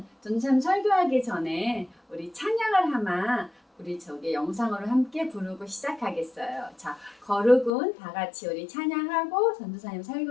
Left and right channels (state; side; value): drops out; right; at 7.7 s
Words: 전참 설교하기 전에 우리 찬양을 하나 우리 영상으로 함께 부르고 시작하겠어요. 자, 거룩은 다 같이 우리 찬양하고 전도사님